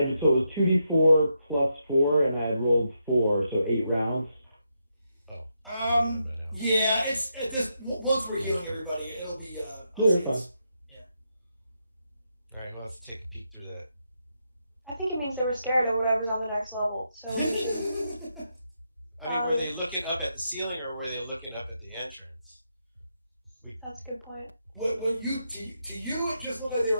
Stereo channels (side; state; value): both; inverted; correlation -0.82